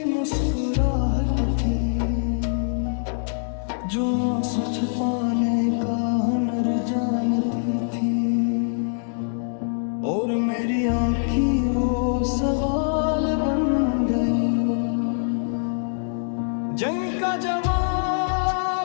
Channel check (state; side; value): silent; right; digital silence